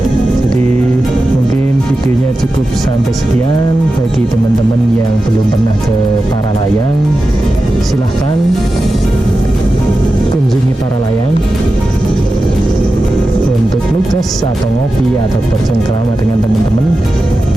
Jadi mungkin videonya cukup sampai sekian. Bagi teman-teman yang belum pernah ke Paralayang, silahkan kunjungi Paralayang untuk nugas atau ngopi atau bercengkrama dengan teman-teman.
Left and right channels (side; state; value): both; normal; correlation 0.92